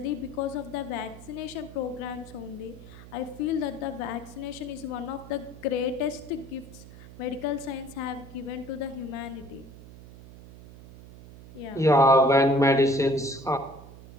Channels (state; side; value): noise; right; hum, 17 dB below the sound